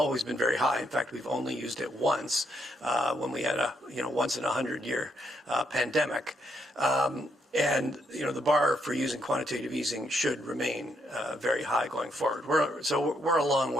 been very high. In fact, we've only used it once when we had a once in 100-year pandemic. And the bar for using quantitative easing should remain very high going forward. We're a long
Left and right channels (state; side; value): normal; both; correlation 0.76